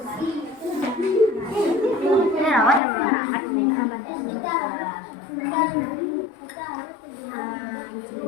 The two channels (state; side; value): drops out; right; at 2.8 s